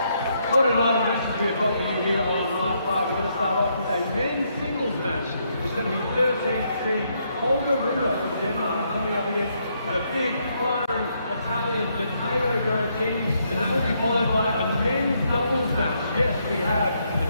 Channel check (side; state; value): both; inverted; correlation -0.75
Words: What a night of matches we have got for you here on Night 5. We're going to start off with a men's singles match. It's going to be 13th seed Holger Rune from Denmark coming up against the big, firing Italian Matteo Berrettini, and that will be followed by a men's doubles match. Yes, we have